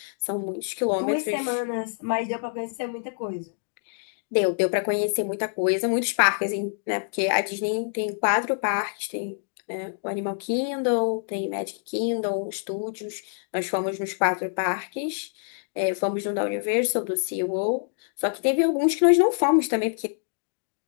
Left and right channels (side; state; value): right; silent; digital silence